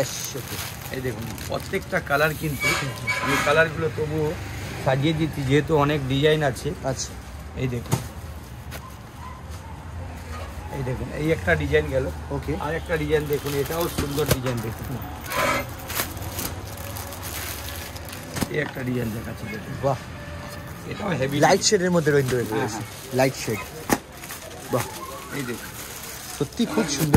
ওকে। এই দেখুন প্রত্যেকটা কালার কিন্তু, এই কালারগুলো তবুও সাজিয়ে দিচ্ছি যেহেতু অনেক ডিজাইন আছে। আচ্ছা, এই দেখুন, এই দেখুন, এই একটা ডিজাইন গেল। ওকে, আর একটা ডিজাইন দেখুন, এটাও সুন্দর ডিজাইন দেখুন। এই একটা ডিজাইন দেখাচ্ছি দেখুন, বাহ, এটাও হেভি লাইট শেডের মধ্যে রয়েছে, হ্যাঁ। Light shade. বাহ, এই দেখুন সত্যি খুব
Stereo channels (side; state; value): both; identical; correlation 1.00